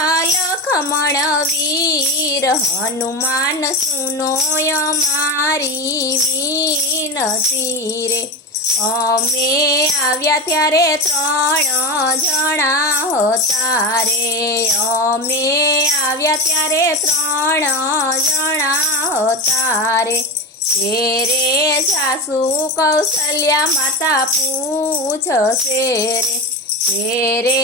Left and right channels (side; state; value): both; normal; correlation 0.19